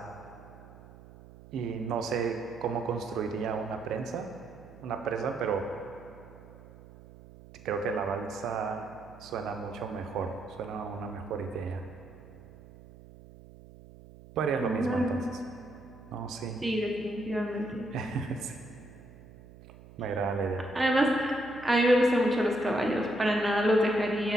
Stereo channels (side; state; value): right; noise; hum, 19 dB below the sound